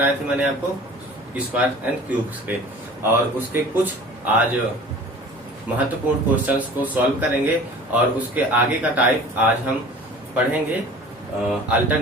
थे? मैंने आपको स्क्वायर एंड क्यूब्स के। और उसके कुछ आज महत्वपूर्ण क्वेश्चंस को सॉल्व करेंगे और उसके आगे का टाइप आज हम पढ़ेंगे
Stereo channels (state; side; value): normal; both; correlation 0.43